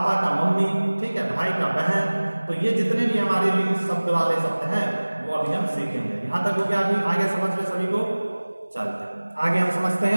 का मम्मी, ठीक है, भाई का बहन, तो ये जितने भी हमारे लिंग शब्द वाले शब्द हैं वो अभी हम सीखेंगे। यहां तक हो गया, अभी आगे समझ में सभी को? चलते हैं आगे, हम समझते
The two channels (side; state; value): both; inverted; correlation -1.00